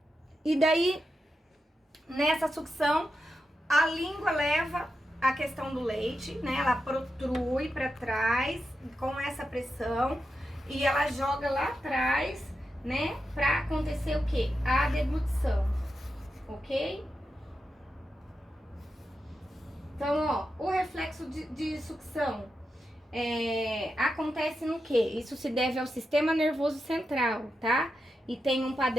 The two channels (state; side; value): normal; both; correlation 0.88